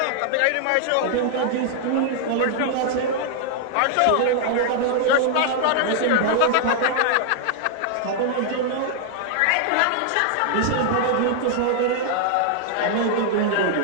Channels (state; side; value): different; both; correlation 0.00